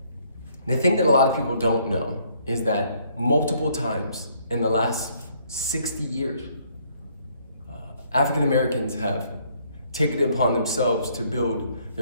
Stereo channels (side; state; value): both; inverted; correlation -0.66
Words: the thing that a lot of people don't know is that multiple times in the last 60 years, African Americans have taken it upon themselves to build